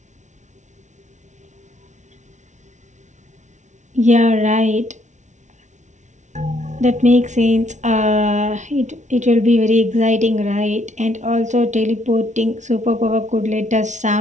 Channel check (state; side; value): late; left; 0.35 ms